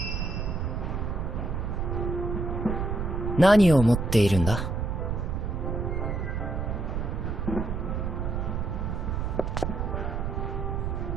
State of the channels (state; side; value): noise; right; rumble, 1 dB below the sound